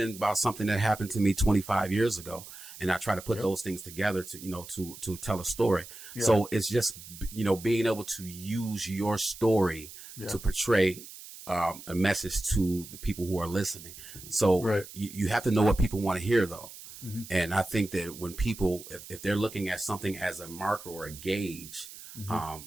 about something that happened to me 25 years ago. And I try to put those things together to tell a story. Yeah. So it's just, being able to use your story to portray a message to the people who are listening. So you have to know what people want to hear, though. And I think that when people, if they're looking at something as a marker or a gauge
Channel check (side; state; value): right; noise; hiss, 15 dB below the sound